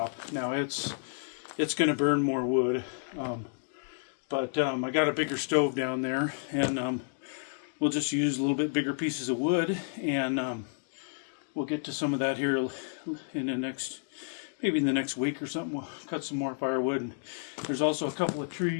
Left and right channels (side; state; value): right; silent; digital silence